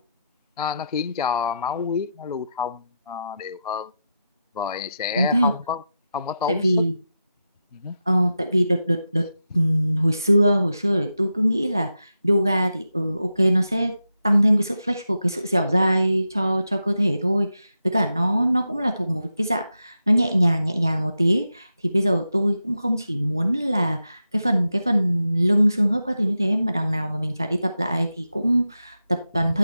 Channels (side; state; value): both; inverted; correlation -0.89